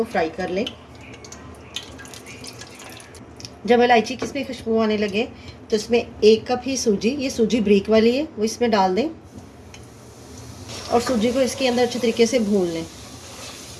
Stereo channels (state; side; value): identical; both; correlation 1.00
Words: फ्राई कर लें। जब इलायची की इसमें खुशबू आने लगे तो इसमें 1 कप ही सूजी, ये सूजी ब्रीक वाली है, वो इसमें डाल दें और सूजी को इसके अंदर अच्छे तरीके से भून लें।